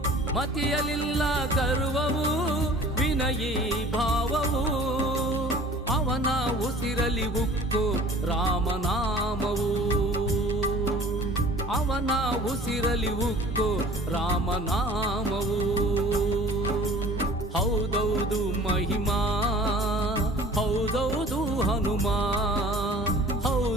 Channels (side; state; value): both; normal; correlation 0.47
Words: ಮತಿಯಲಿಲ್ಲ ಗರ್ವವು ವಿನಯೀ ಭಾವವು ಅವನ ಉಸಿರಲಿ ಉಕ್ಕು ರಾಮನಾಮವು ಅವನ ಉಸಿರಲಿ ಉಕ್ಕು ರಾಮನಾಮವು ಹೌದೌದು ಮಹಿಮಾ ಹೌದೌದು ಹನುಮ